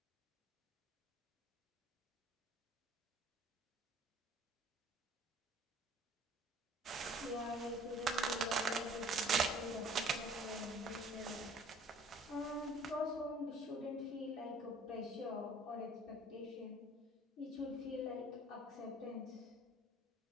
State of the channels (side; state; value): both; normal; correlation 0.52